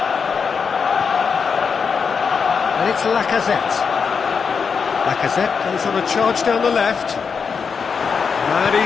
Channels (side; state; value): right; quieter; 5.9 dB